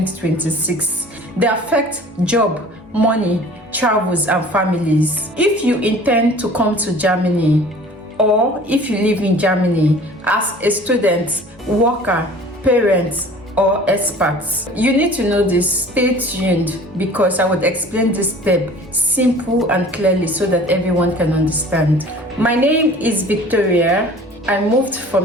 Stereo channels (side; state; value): both; normal; correlation 0.46